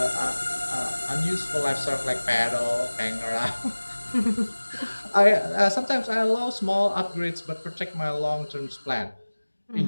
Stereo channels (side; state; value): both; inverted; correlation -1.00